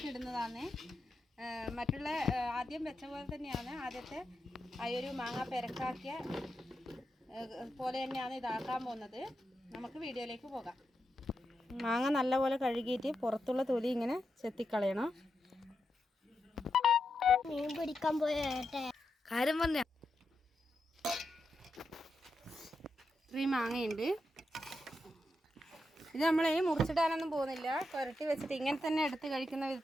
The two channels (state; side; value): normal; both; correlation 0.86